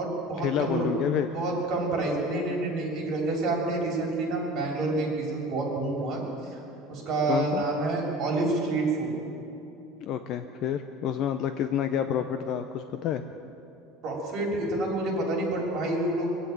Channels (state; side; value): normal; both; correlation 0.40